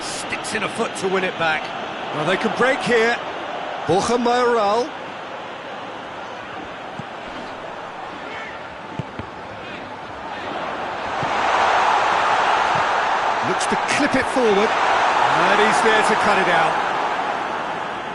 Sticks in a foot to win it back. Well, they can break here. Borja Mayoral. Looks to clip it forward. And he's there to cut it out.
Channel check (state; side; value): identical; both; correlation 1.00